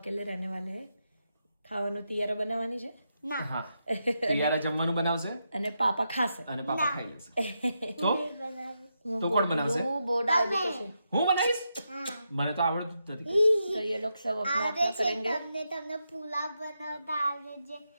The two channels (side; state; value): both; inverted; correlation -0.84